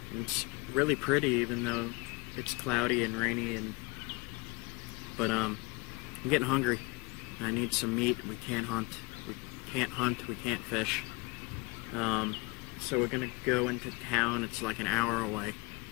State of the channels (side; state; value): right; quieter; 26.3 dB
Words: And it's really pretty, even though it's cloudy and rainy, but I'm getting hungry. I need some meat. We can't hunt, we can't fish. So we're gonna go into town. It's like an hour away,